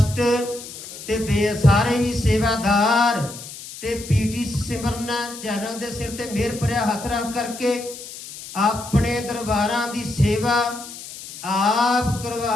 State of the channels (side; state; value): left; noise; hiss, 13 dB below the sound